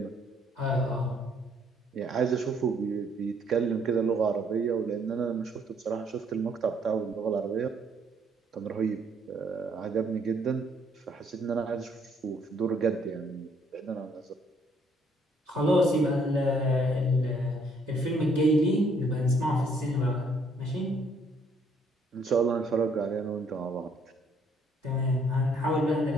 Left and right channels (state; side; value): normal; both; correlation 0.66